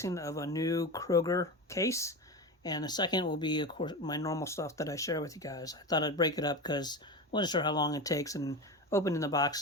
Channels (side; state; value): both; normal; correlation 0.23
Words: of a new Kroger case, and the second will be, of course, my normal stuff that I share with you guys. I thought I'd break it up because I wasn't sure how long it takes, and opening the